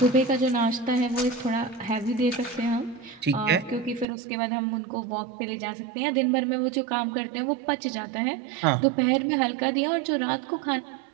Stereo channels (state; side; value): drops out; left; at 4.0 s